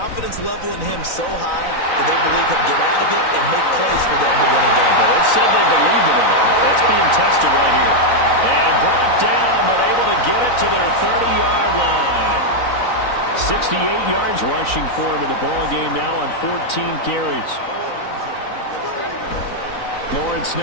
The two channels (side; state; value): right; late; 3.9 ms